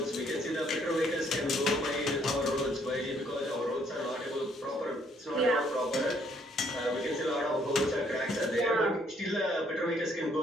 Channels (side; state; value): both; normal; correlation 0.66